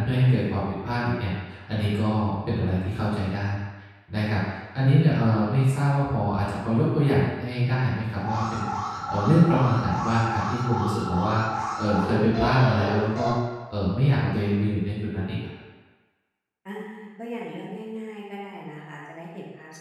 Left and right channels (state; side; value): identical; both; correlation 1.00